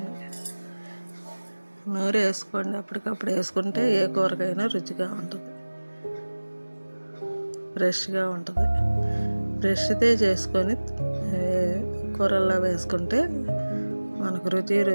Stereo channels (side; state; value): both; inverted; correlation -1.00